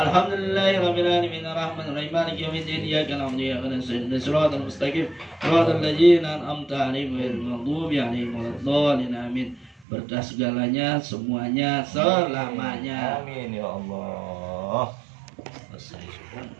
الحمد لله رب العالمين الرحمن الرحيم مالك يوم الدين إياك نعبد وإياك نستعين صراط المستقيم صراط الذين أنعمت عليهم غير المغضوب عليهم ولا الضالين آمين. Berkah segalanya, semuanya, selamanya. Amin ya Allah. Selesai.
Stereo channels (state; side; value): drops out; left; at 9.9 s